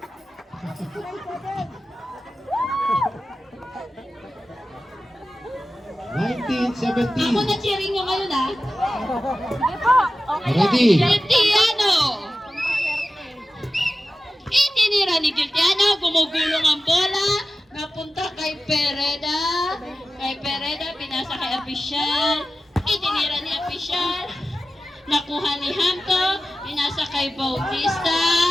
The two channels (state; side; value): normal; both; correlation 0.95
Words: 19-17. Ako na cheering nyo ngayon ha. Ready? Cristiano. Itinira ni Cristiano. Gumugulong ang bola. Napunta kay Pereda. Kay Pereda, pinasa kay Apisyal. Itinira ni Apisyal. Nakuha ni Hamko. Pinasa kay Bautista.